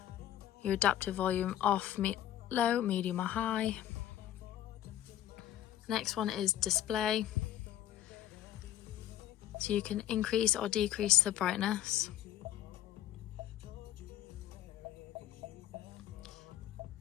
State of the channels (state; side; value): quieter; right; 12.4 dB